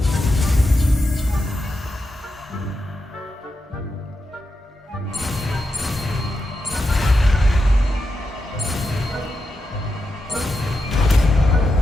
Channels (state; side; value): normal; both; correlation 0.88